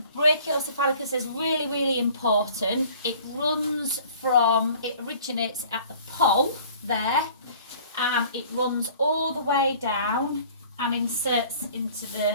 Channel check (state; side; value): inverted; both; correlation -0.50